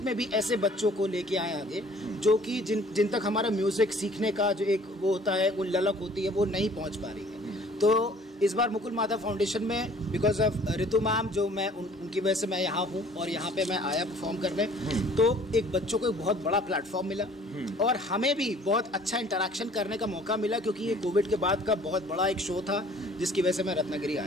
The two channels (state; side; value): normal; both; correlation 0.53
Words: में भी ऐसे बच्चों को लेके आए आगे जो कि जिन तक हमारा म्यूजिक सीखने का जो एक वो होता है, वो ललक होती है, वो नहीं पहुंच पा रही है। तो इस बार मुकुल माधव फाउंडेशन में बिकॉज ऑफ रितु मैम, जो मैं उनकी वजह से मैं यहाँ हूँ और यहाँ पे मैं आया परफॉर्म करने, तो एक बच्चों को एक बहुत बड़ा प्लेटफॉर्म मिला, और हमें भी बहुत अच्छा इंटरेक्शन करने का मौका मिला, क्योंकि ये कोविड के बाद का बहुत बड़ा एक शो था जिसकी वजह से मैं रत्नागिरी